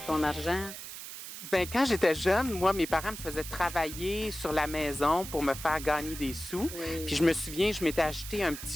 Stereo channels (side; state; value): right; noise; hiss, 10 dB below the sound